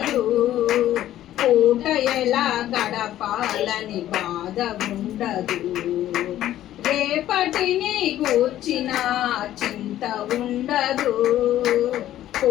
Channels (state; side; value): quieter; right; 12.9 dB